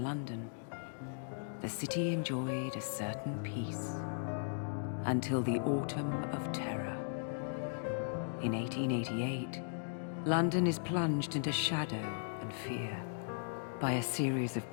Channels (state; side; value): silent; right; digital silence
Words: London, the city enjoyed a certain peace until the Autumn of Terror. In 1888, London is plunged into shadow and fear by a series of